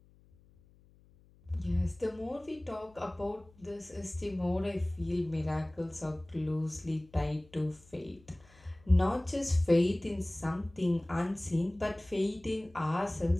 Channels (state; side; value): noise; left; hum, 28 dB below the sound